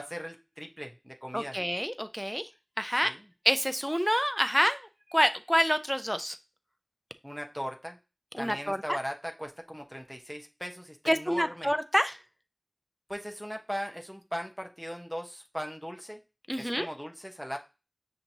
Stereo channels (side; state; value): both; identical; correlation 1.00